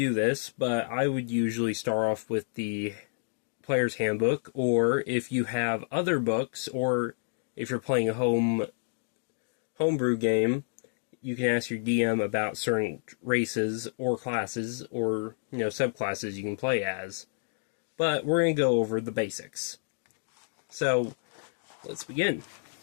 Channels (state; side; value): silent; right; digital silence